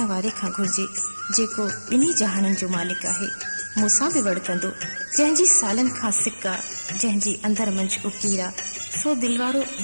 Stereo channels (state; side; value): inverted; both; correlation -1.00